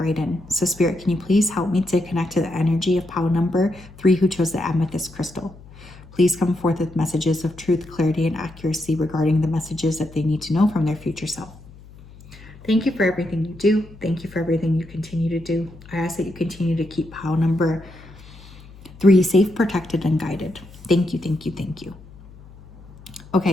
in. So Spirit, can you please help me to connect to the energy of Pile number 3 who chose the amethyst crystal? Please come forth with messages of truth, clarity, and accuracy regarding the messages that they need to know from their future self. Thank you for everything you do. Thank you for everything you continue to do. I ask that you continue to keep Pile number 3 safe, protected, and guided. Thank you, thank you, thank you.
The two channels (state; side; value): noise; left; hum, 20 dB below the sound